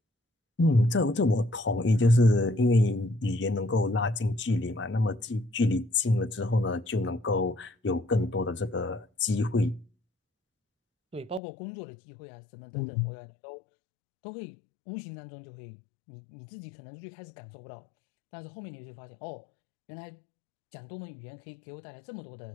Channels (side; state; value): right; drops out; at 11.4 s